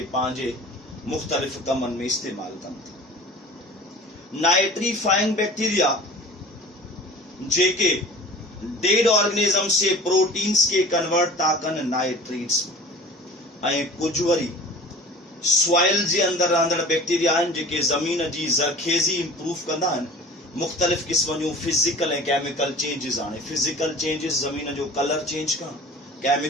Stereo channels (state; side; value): normal; both; correlation 0.42